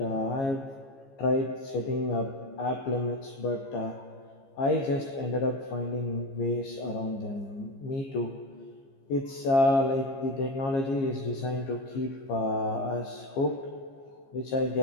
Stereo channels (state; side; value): late; right; 15 ms